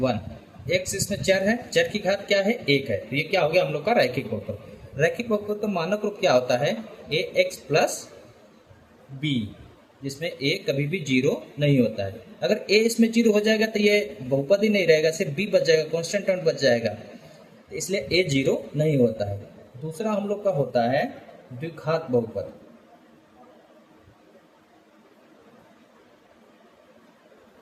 1, x इसमें चर है, चर की घात क्या है? 1 है, तो ये क्या हो गया हम लोग का रैखिक बहुपद। रैखिक बहुपद का मानक रूप क्या होता है? ax प्लस b, जिसमें a कभी भी 0 नहीं होता है। अगर a इसमें 0 हो जाएगा तो ये बहुपद ही नहीं रहेगा, सिर्फ b बच जाएगा, कांस्टेंट टर्म बच जाएगा, तो इसलिए a 0 नहीं होता है। दूसरा हम लोग का होता है द्विघात बहुपद।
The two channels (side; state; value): both; identical; correlation 1.00